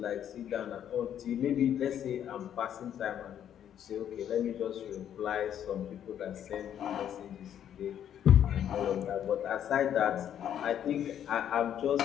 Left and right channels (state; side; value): quieter; right; 9.9 dB